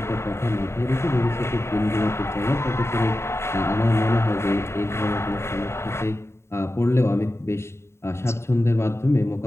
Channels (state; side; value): late; right; 0.13 ms